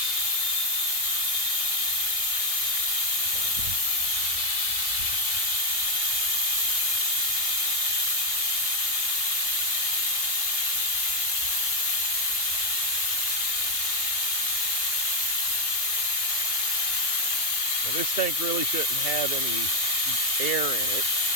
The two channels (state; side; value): late; right; 2.8 ms